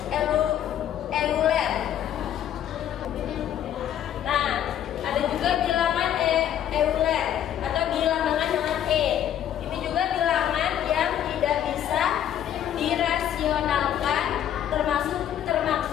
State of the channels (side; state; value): right; quieter; 10.5 dB